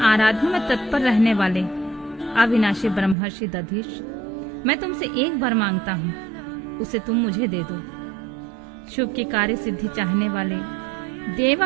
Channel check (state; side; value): drops out; left; at 3.2 s